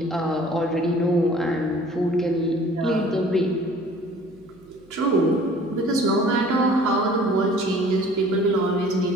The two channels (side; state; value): right; noise; hum, 27 dB below the sound